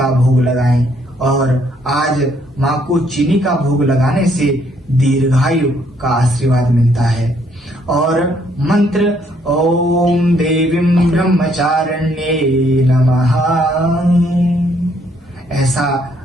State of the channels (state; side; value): normal; both; correlation 0.68